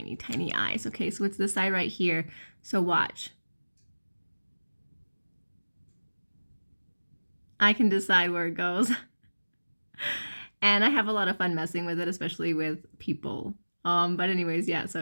tiny eyes, okay? So it's this eye right here. So watch. I can decide where it goes. And I have a lot of fun messing with it, especially with people. But anyways, yeah,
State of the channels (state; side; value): inverted; both; correlation -1.00